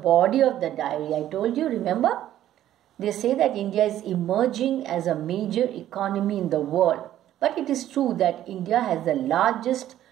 of the diary. I told you, remember? They say that India is emerging as a major economy in the world. But it is true that India has the largest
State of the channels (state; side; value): quieter; left; 12.4 dB